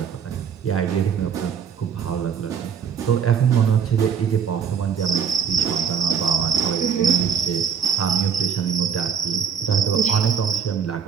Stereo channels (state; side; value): quieter; left; 7.2 dB